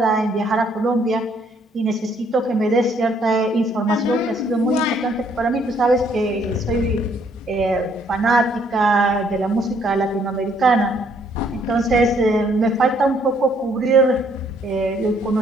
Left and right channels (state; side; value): normal; both; correlation 0.66